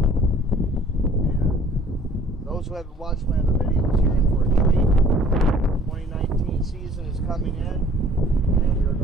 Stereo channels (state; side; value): normal; both; correlation 0.54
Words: and those who haven't watched my other videos, you're in for a treat. 2019 season is coming in, and we are